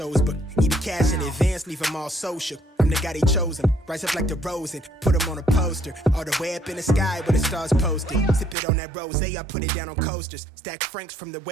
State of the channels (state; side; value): drops out; left; at 8.6 s